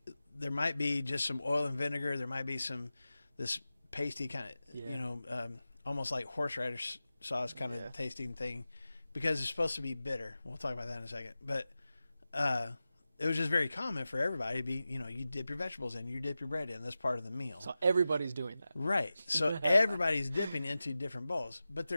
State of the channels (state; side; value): inverted; both; correlation -0.94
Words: there might be just some oil and vinegar. There might be this pasty kind of, almost like horseradish sauce kind of tasting thing, because it's supposed to be bitter. We'll talk about that in a second. But it was just very common for everybody to be, you dip your vegetables in, you dip your bread in. That's part of the meal. So everybody's doing that. Right. So everybody's dipping into different bowls. But